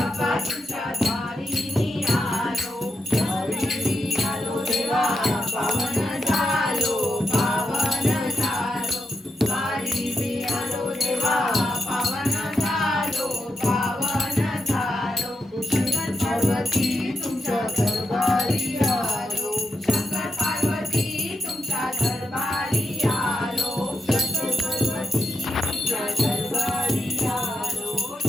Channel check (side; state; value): both; normal; correlation 0.85